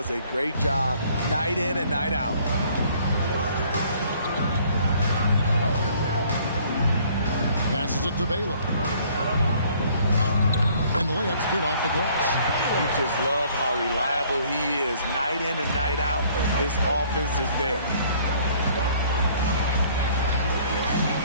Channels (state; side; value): inverted; both; correlation -0.59